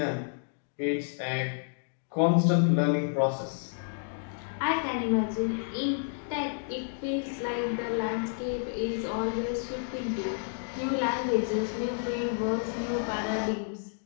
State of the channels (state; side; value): silent; right; digital silence